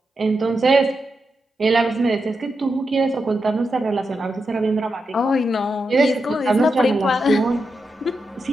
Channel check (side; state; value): both; normal; correlation 0.87